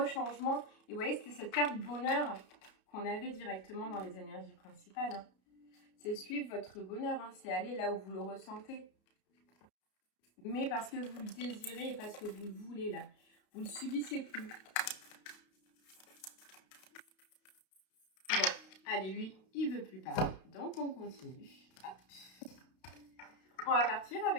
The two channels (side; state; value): right; late; 32 ms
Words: changement. Et vous voyez, c'était cette carte bonheur qu'on avait directement dans les énergies principales. Hein. C'est suivre votre bonheur, hein. C'est aller là où vous le ressentez. Mais parce que vous le désirez et parce que vous le voulez là. Vous ne le subissez plus. Bon, allez, lui, il ne veut plus parler. Donc, on continue. Hop. On va partir